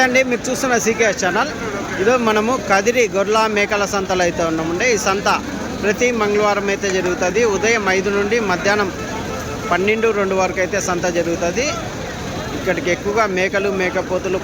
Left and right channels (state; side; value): identical; both; correlation 1.00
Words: మీరు చూస్తున్న CKS channel. ఈరోజు మనము కదిరి గొర్రెల మేకల సంతలో అయితే ఉన్నామండి. ఈ సంత ప్రతి మంగళవారం అయితే జరుగుతుంది. ఉదయం 5 నుండి మధ్యాహ్నం 12-2 వరకు అయితే సంత జరుగుతుంది. ఇక్కడికి ఎక్కువగా మేకలు, మేకపోతులు,